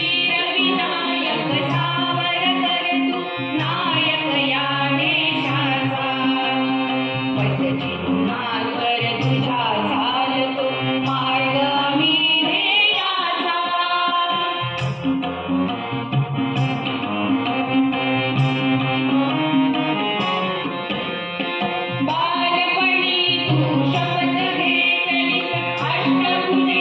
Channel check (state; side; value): identical; both; correlation 1.00